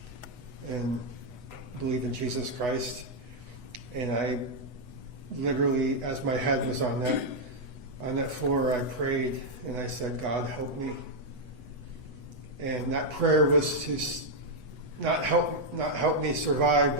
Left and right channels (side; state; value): left; late; 8.1 ms